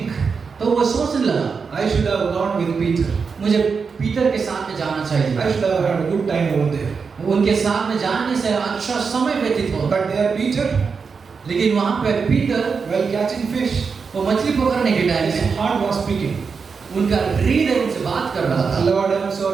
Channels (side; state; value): left; quieter; 5.4 dB